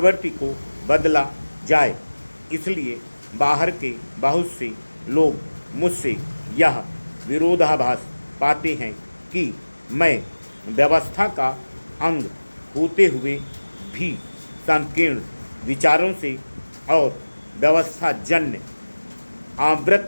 को बदला जाए। इसलिए बाहर के बहुत से लोग मुझसे यह विरोधाभास पाते हैं कि मैं व्यवस्था का अंग होते हुए भी संकीर्ण विचारों से और व्यवस्थाजन्य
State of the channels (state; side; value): inverted; both; correlation -1.00